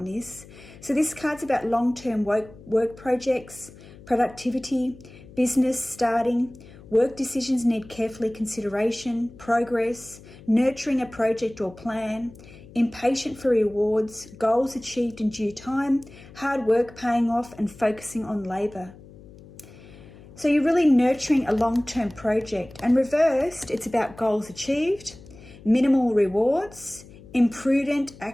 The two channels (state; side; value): noise; left; hum, 20 dB below the sound